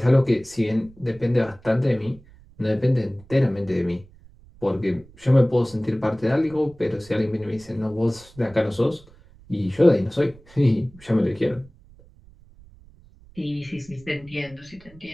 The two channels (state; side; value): noise; right; rumble, 24 dB below the sound